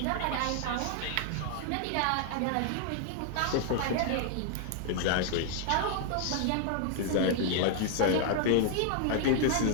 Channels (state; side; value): different; both; correlation 0.00